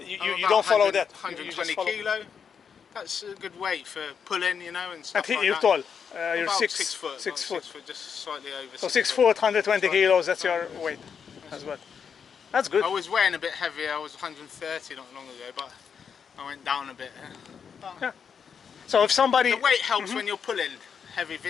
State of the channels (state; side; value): quieter; right; 6.8 dB